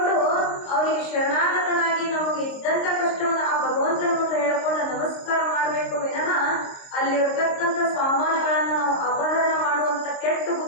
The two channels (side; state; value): right; late; 22 ms